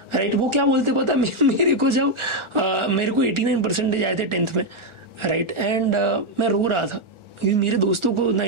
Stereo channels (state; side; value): late; left; 1.4 ms